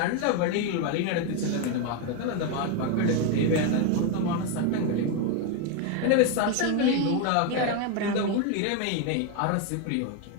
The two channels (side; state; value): both; different; correlation 0.01